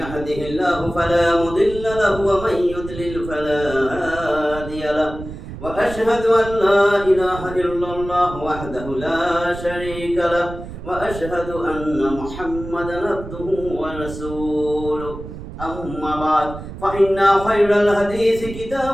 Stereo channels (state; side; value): noise; right; rumble, 11 dB below the sound